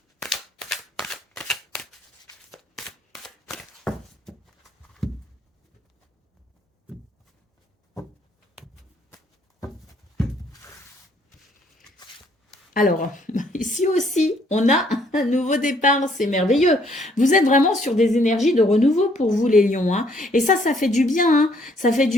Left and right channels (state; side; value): normal; both; correlation 0.65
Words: Alors, ici aussi, on a un nouveau départ, c'est merveilleux. Vous êtes vraiment sur des énergies de renouveau pour vous, les lions. Hein. Et ça fait du bien. Hein. Ça fait